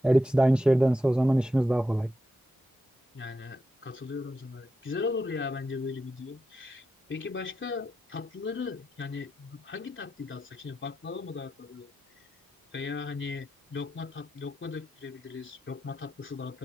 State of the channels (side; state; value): both; normal; correlation 0.87